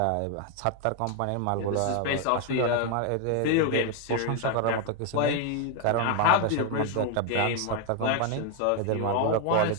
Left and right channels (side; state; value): both; different; correlation 0.01